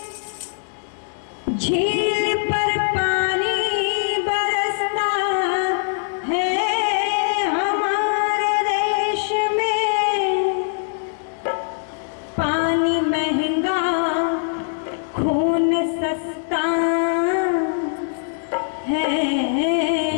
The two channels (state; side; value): silent; right; digital silence